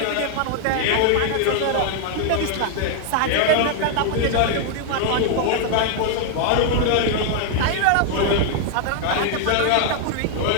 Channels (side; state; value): both; different; correlation 0.00